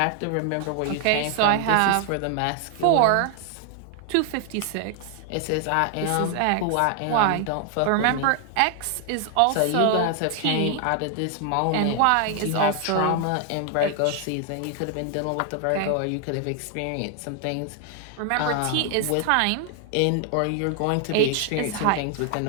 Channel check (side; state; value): both; different; correlation 0.00